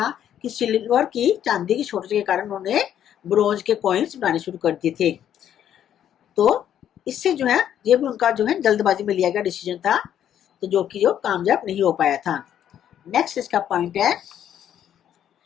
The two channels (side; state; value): right; quieter; 10.2 dB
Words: कि सिल्वर की, चांदी की शॉर्टेज के कारण उन्होंने ब्रोंज के कॉइन्स बनाने शुरू कर दिए थे। तो इससे जो है ये भी उनका जो है जल्दबाजी में लिया गया डिसीजन था, तो जो कामयाब नहीं हो पाया था। नेक्स्ट इसका पॉइंट है,